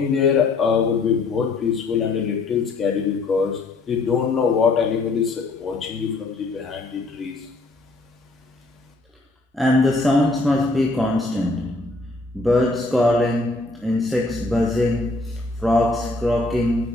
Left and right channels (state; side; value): quieter; right; 3.2 dB